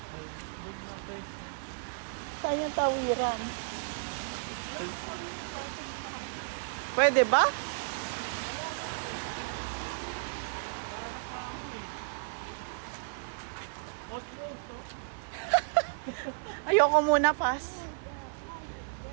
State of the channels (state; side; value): silent; left; 56 dB below the other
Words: Saan yung tawiran? Pwede ba? Ayoko muna, pass.